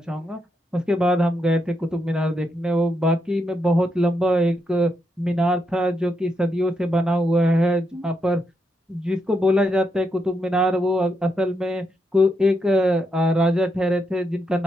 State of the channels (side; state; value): both; normal; correlation 0.81